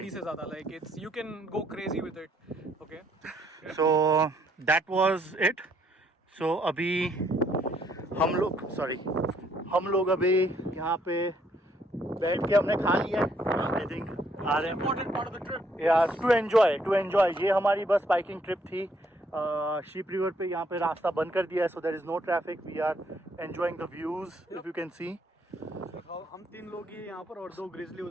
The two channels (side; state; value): both; normal; correlation 0.69